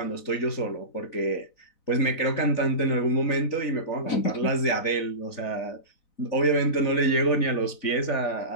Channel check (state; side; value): late; right; 4.0 ms